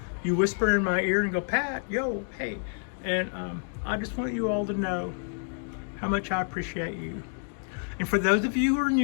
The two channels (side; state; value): right; silent; 59 dB below the other